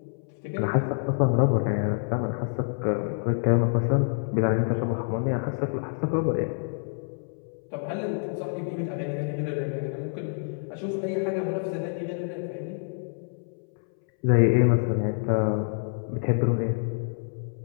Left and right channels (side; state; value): right; silent; 60 dB below the other